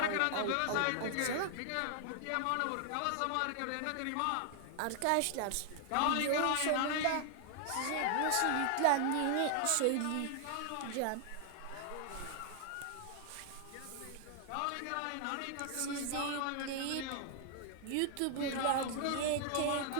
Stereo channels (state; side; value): different; both; correlation 0.00